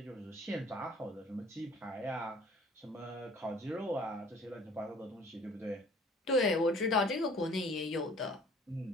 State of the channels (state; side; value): normal; both; correlation 0.52